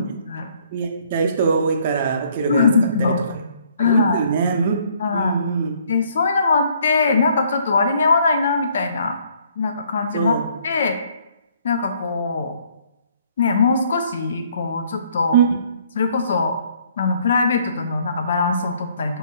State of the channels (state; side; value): inverted; both; correlation -0.64